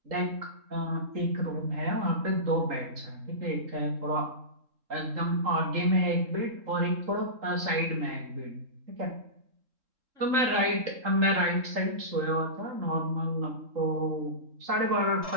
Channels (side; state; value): left; late; 3.8 ms